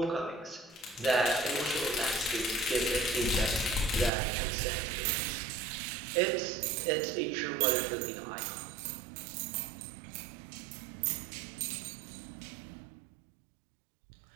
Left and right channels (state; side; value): drops out; left; at 4.1 s